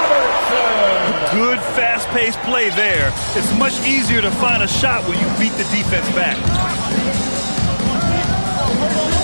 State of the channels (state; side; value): inverted; both; correlation -1.00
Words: Good fast-paced play there. It's much easier to find a shot when you beat the defense back.